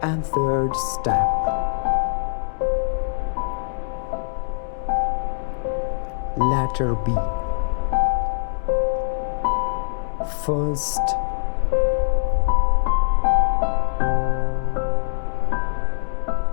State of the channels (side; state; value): right; silent; digital silence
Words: and third step. Letter B. First,